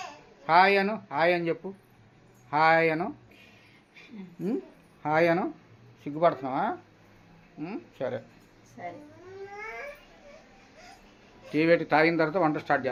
హాయ్ అను, హాయ్ అని చెప్పు. హాయ్ అను, హాయ్ అను. సిగ్గుపడుతున్నావా? సరే సరే. టీ పెట్టి తాగిన తర్వాత వంట స్టార్ట్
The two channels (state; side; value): identical; both; correlation 1.00